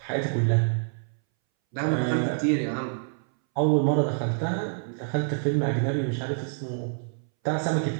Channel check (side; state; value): left; silent; 60 dB below the other